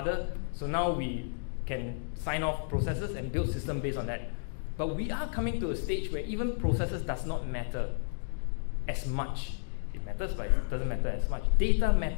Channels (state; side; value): silent; right; digital silence